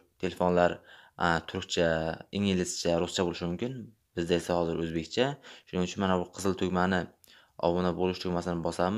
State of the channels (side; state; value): both; identical; correlation 1.00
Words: telefonlar turkcha, inglizcha, ruscha bo'lishi mumkin. Bizda esa hozir o'zbekcha. Shuning uchun mana bu qizil tugmani obuna bo'lish tugmasini